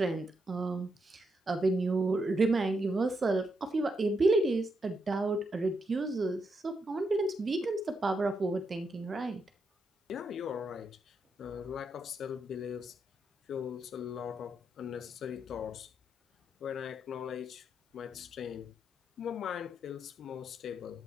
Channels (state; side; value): normal; both; correlation 0.81